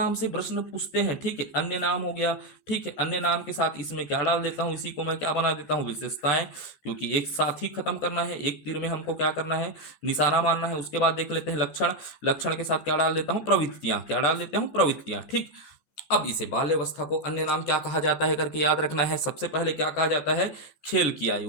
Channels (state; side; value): late; right; 14 ms